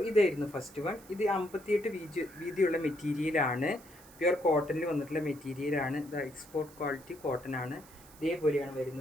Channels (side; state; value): right; noise; hiss, 22 dB below the sound